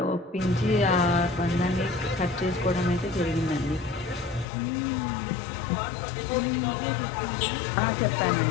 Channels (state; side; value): drops out; right; at 4.5 s